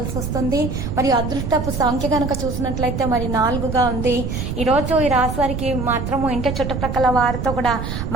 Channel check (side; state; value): right; noise; rumble, 4 dB below the sound